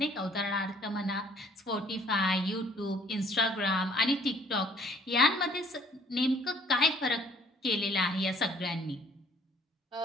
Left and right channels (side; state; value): both; normal; correlation 0.58